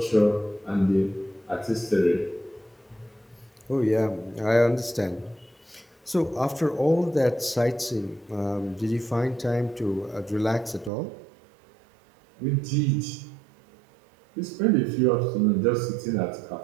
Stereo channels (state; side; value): drops out; left; at 10.9 s